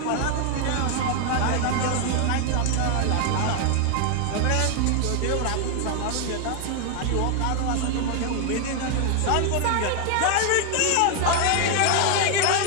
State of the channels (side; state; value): both; different; correlation 0.00